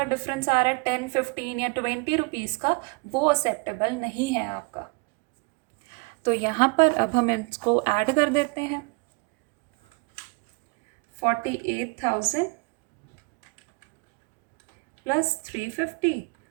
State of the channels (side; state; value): left; quieter; 30.2 dB